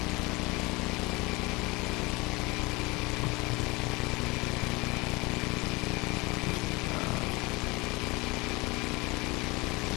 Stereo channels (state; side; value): quieter; right; 24.4 dB